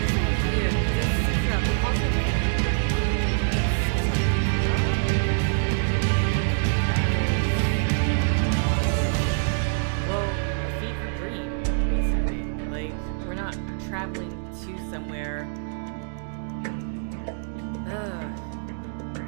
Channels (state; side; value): silent; left; digital silence